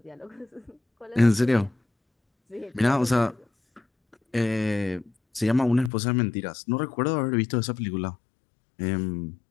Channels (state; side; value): drops out; right; at 5.9 s